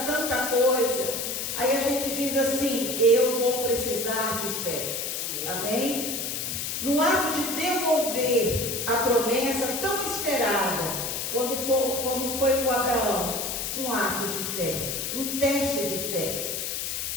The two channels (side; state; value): left; noise; hiss, 3 dB below the sound